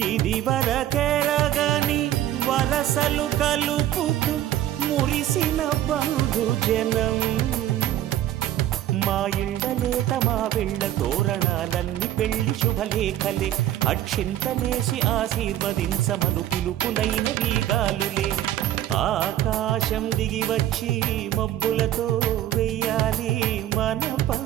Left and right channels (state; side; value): quieter; left; 12.6 dB